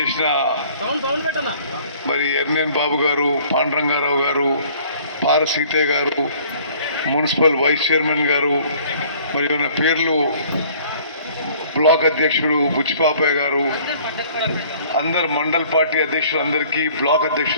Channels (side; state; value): both; inverted; correlation -0.54